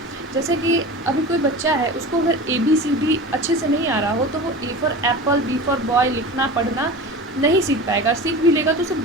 जैसे कि अभी कोई बच्चा है, उसको अगर ABCD अच्छे से नहीं आ रहा हो तो वो A for Apple, B for boy लिखना पढ़ना नहीं सीख पाएगा, सीख भी लेगा तो उसे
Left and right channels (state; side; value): normal; both; correlation 0.32